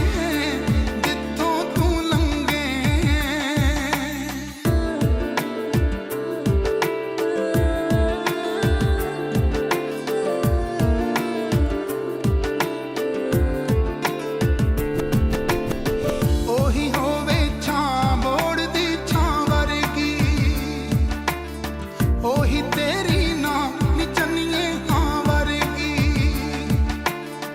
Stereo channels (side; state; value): both; identical; correlation 1.00